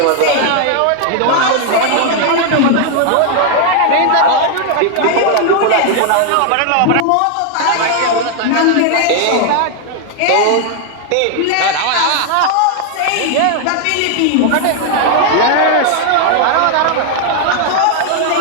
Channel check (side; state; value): both; different; correlation 0.00